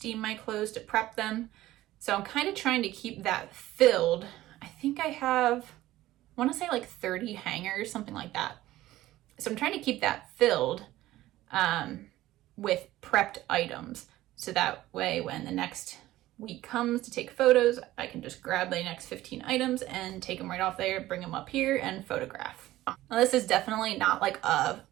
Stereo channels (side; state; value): left; quieter; 15.8 dB